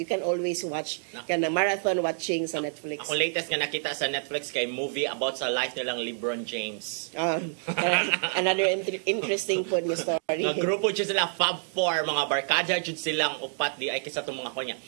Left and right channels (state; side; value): silent; left; digital silence